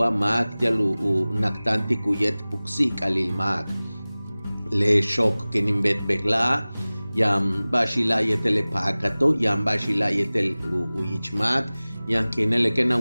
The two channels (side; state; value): both; inverted; correlation -0.99